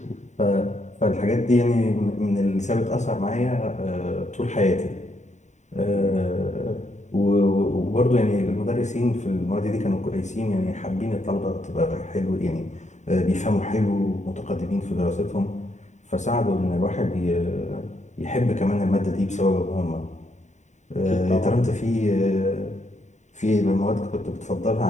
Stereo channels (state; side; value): late; right; 0.34 ms